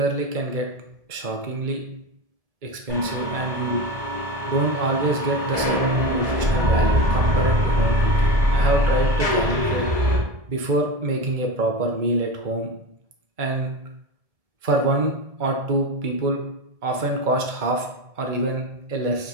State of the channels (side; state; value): left; late; 1.7 ms